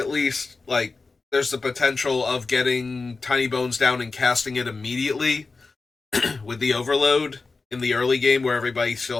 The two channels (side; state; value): right; quieter; 4.0 dB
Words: least, like, there's the potential of getting Tinybones down and casting it immediately with the overload in the early game where everybody still